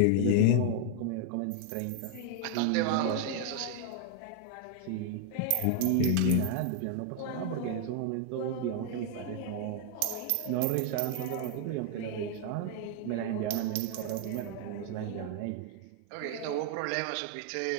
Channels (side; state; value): both; different; correlation 0.00